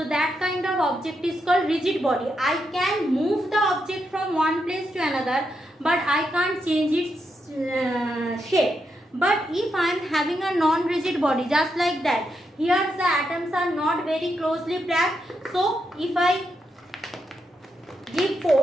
that kind of object is called rigid body. I can move the object from one place to another, but I can't change its shape. But if I am having a non-rigid body, just like that, here the atoms are not very closely packed, so if I give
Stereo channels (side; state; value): both; normal; correlation 0.83